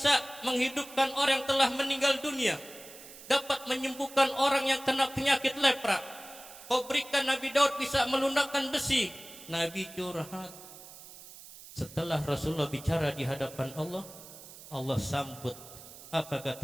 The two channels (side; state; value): right; noise; hiss, 17 dB below the sound